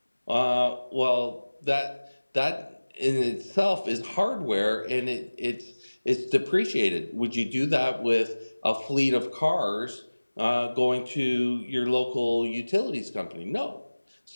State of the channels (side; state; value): both; inverted; correlation -1.00